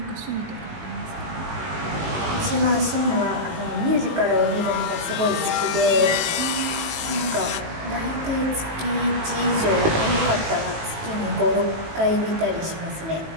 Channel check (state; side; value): late; left; 19 ms